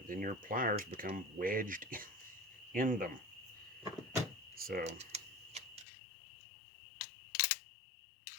then your pliers become wedged in them. So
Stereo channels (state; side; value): drops out; right; at 5.9 s